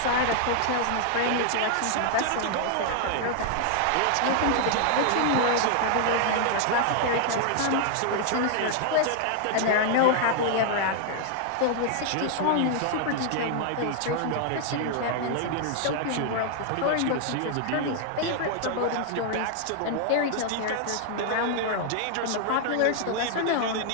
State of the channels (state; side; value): different; both; correlation 0.00